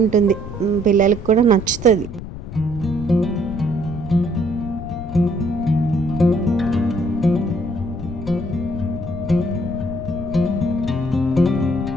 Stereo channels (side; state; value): left; noise; rumble, 10 dB below the sound